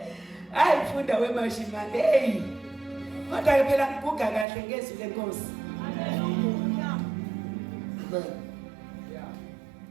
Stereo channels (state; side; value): drops out; left; at 4.5 s